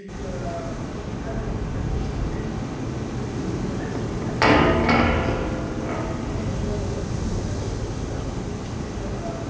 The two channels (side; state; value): both; identical; correlation 1.00